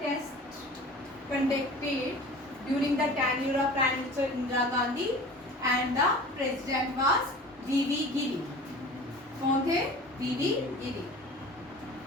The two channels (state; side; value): normal; both; correlation 0.40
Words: test conducted during the tenure of prime minister Indira Gandhi and the president was V V Giri. कौन थे? V V Giri.